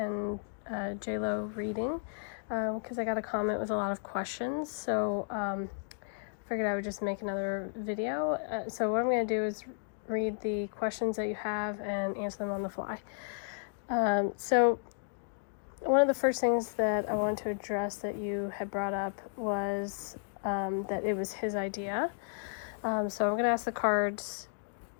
J-Lo reading because I got a comment with a lot of questions, so figured I would just make another video. So what I'm going to do is read the questions that you have and answer them on the fly. So one of the first things that I wanted to address that you had brought up was that it was his idea. So I'm going to ask the cards,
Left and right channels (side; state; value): right; silent; digital silence